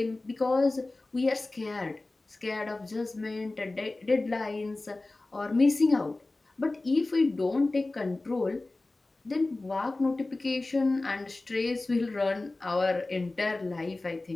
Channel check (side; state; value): right; quieter; 3.1 dB